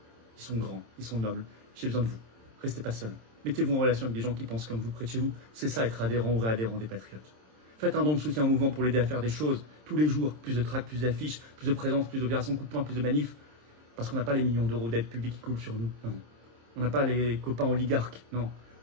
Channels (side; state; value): left; late; 26 ms